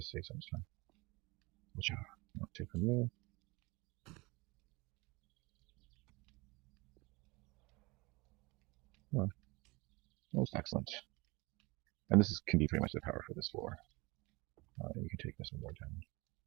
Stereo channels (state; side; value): quieter; left; 24.6 dB